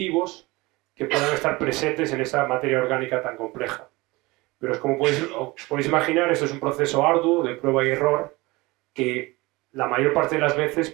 que puedan estar presentes en esa materia orgánica tan compleja. Pero como podéis imaginar, esto es un proceso arduo de prueba y error que la mayor parte de las veces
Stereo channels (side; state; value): left; quieter; 22.3 dB